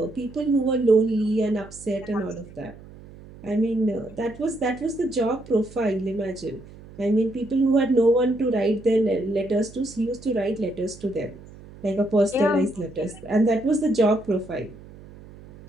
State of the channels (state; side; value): noise; right; hum, 19 dB below the sound